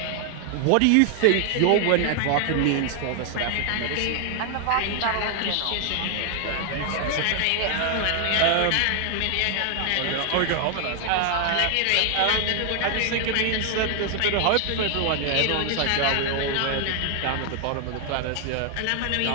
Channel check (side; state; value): both; different; correlation 0.00